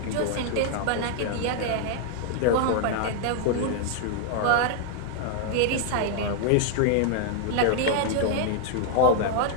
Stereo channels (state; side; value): different; both; correlation 0.00